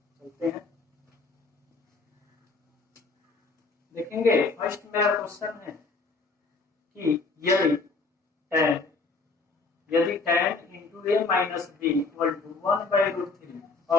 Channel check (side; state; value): right; quieter; 3.9 dB